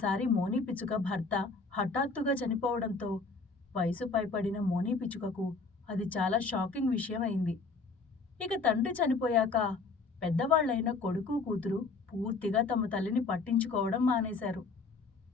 మోని పిచ్చుక భర్త హఠాత్తుగా చనిపోవడంతో వయసు పైపడిన మోని పిచ్చుకకు అది చాలా షాకింగ్ విషయం అయింది. ఇక తండ్రి చనిపోయాక పెద్దవాళ్లైన కొడుకు కూతురు పూర్తిగా తమ తల్లిని పట్టించుకోవడం మానేశారు.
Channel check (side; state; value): right; quieter; 4.2 dB